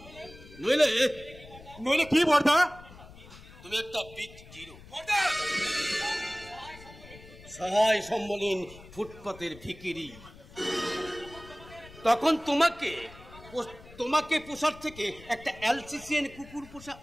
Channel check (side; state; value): left; noise; rumble, 19 dB below the sound